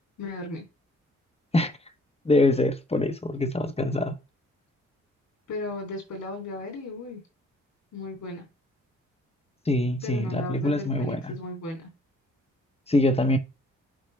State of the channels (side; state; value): both; normal; correlation 0.59